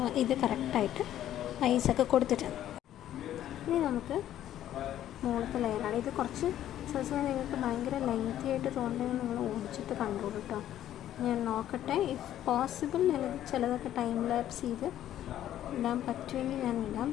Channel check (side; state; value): right; quieter; 12.0 dB